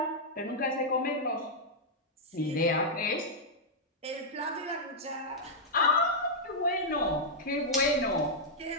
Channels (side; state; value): both; normal; correlation -0.06